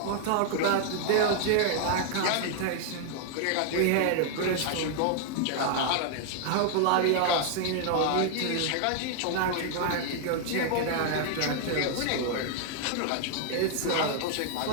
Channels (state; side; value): different; both; correlation 0.00